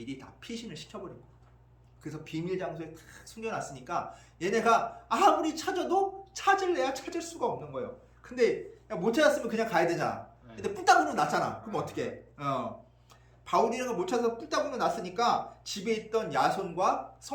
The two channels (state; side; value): identical; both; correlation 1.00